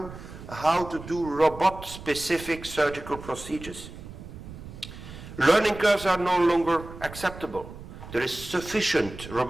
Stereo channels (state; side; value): noise; right; rumble, 14 dB below the sound